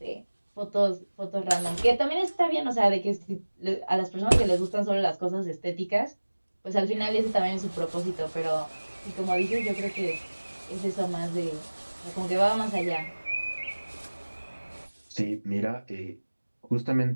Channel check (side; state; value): both; inverted; correlation -1.00